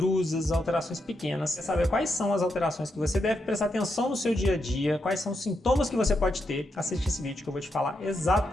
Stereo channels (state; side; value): normal; both; correlation 0.83